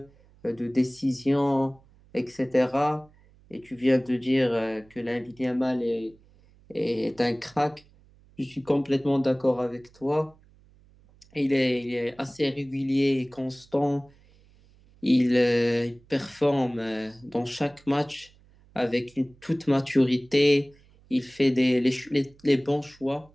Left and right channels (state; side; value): noise; right; hum, 28 dB below the sound